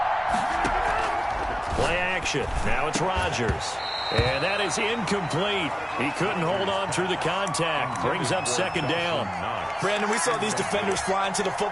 Play action. Now it's Rodgers. And that is incomplete. He couldn't hold on through the contact. Brings up 2nd down. Brandon, we saw these defenders flying to the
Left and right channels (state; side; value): identical; both; correlation 1.00